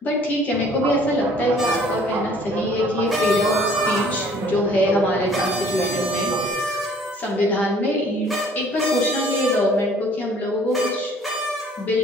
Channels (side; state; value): both; normal; correlation 0.55